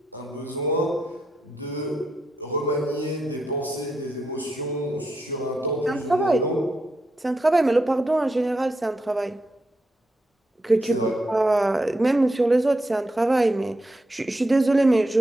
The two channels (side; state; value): both; normal; correlation 0.84